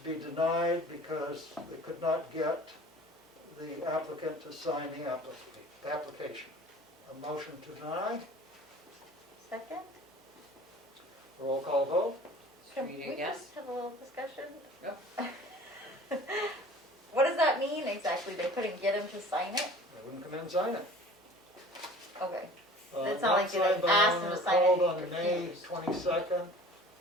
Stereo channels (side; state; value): both; normal; correlation 0.45